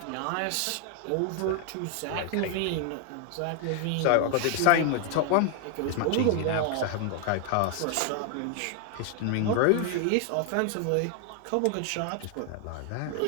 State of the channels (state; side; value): different; both; correlation 0.00